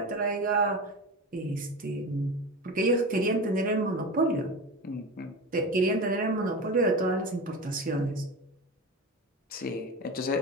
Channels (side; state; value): both; normal; correlation 0.26